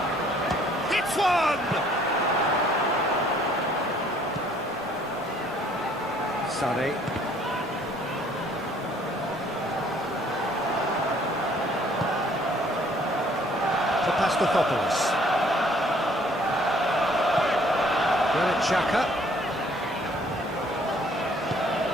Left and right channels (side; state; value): both; normal; correlation 0.60